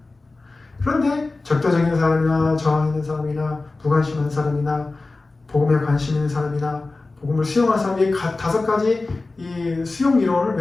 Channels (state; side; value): quieter; right; 3.4 dB